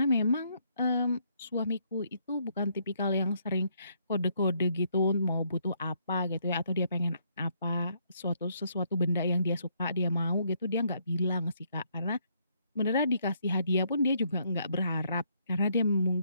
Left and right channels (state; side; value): inverted; both; correlation -0.71